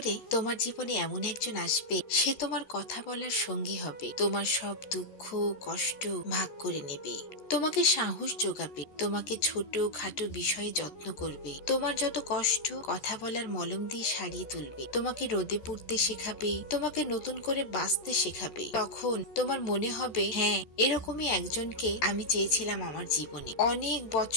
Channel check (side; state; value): right; late; 14 ms